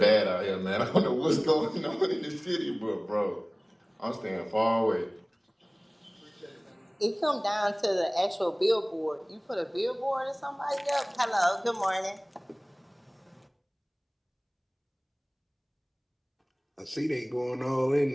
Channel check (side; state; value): both; identical; correlation 1.00